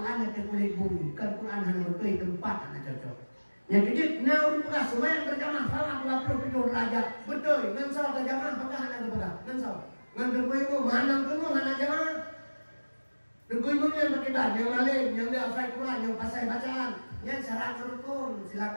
atau kulit bumi, kan Quran hanya bertulis tempat hanya cocok. Yang kejut, nah udah semua yang berjamaah salah 27 derajat, betul. Ngansau terjamaah apakah hanya berpegang? Ngansau, ngantuk ibu, mana tunggu hanya jamaah. Tunggu ibunya yang berkibar, yang lain, yang dia hafal Quran, yang pasai bacaan, yang syarat rukun,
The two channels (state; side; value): inverted; both; correlation -1.00